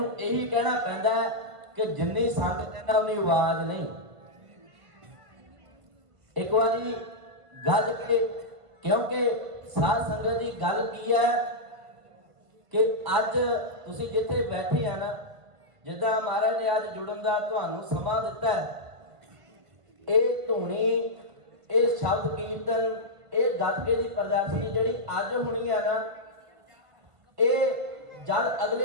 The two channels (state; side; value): late; left; 1.5 ms